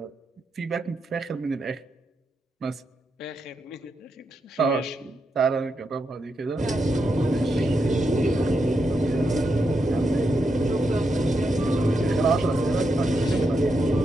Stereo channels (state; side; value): normal; both; correlation 0.84